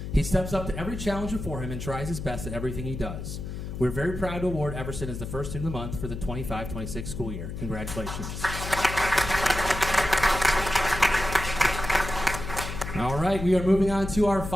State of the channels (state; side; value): noise; left; hum, 7 dB below the sound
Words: He steps up to every challenge before him and tries his best at everything he does. We're very proud to award Everson as the first student of the month for the 25-26 school year. Congratulations. All right, we are moving on to our